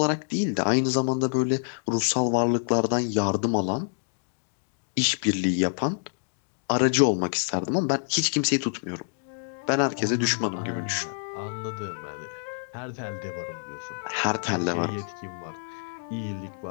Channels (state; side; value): silent; right; digital silence